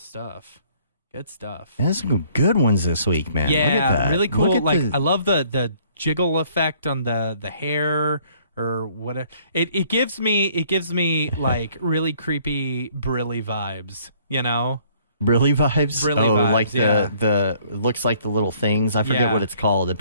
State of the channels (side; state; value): both; inverted; correlation -0.60